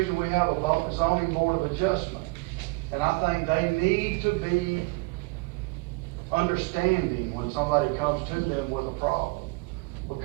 we have a zoning board of adjustment. And I think they need to be understanding when somebody comes to them with a problem.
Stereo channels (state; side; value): quieter; left; 26.0 dB